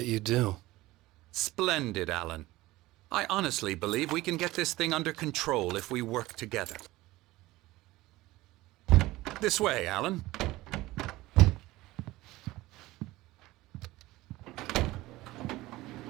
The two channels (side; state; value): left; quieter; 18.5 dB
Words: you do. Splendid, Alan. I honestly believe we can get this thing under control if we work together. This way, Alan.